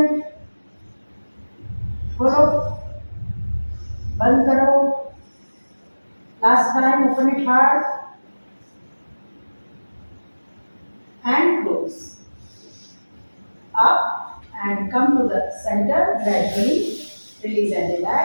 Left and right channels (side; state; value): both; inverted; correlation -1.00